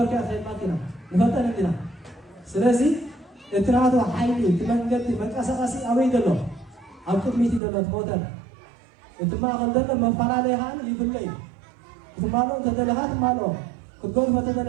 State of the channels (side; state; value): left; drops out; at 7.6 s